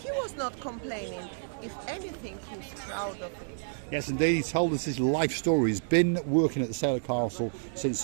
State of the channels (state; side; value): silent; left; digital silence